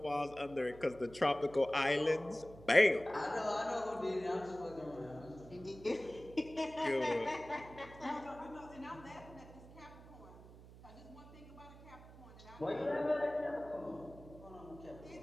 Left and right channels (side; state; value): right; noise; hum, 18 dB below the sound